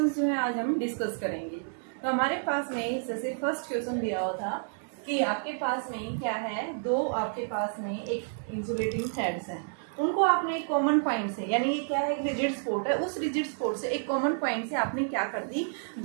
जो है आज हम डिस्कस करेंगे। तो हमारे पास में जैसे फर्स्ट क्वेश्चन दिया हुआ था कि आपके पास में क्या है, दो आपके पास में एक इंसुलेटिंग थ्रेड्स हैं, उनको आपने एक कॉमन पॉइंट से यानी ये क्या है, एक रिजिड स्पॉट है, उस रिजिड स्पॉट से एक कॉमन पॉइंट से आपने क्या कर दी,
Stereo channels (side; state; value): left; silent; digital silence